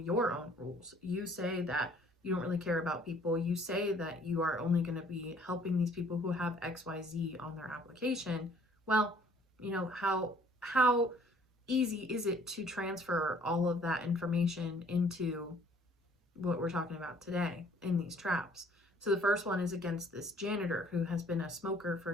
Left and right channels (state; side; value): normal; both; correlation 0.58